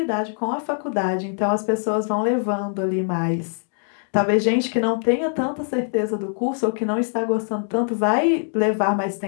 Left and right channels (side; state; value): right; silent; digital silence